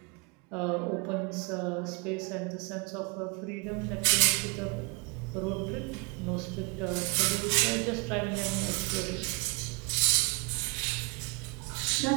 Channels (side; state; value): left; quieter; 28.2 dB